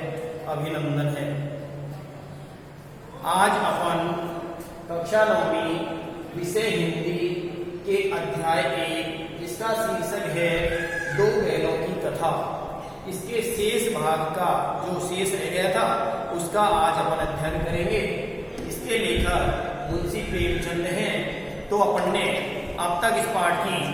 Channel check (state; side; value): identical; both; correlation 1.00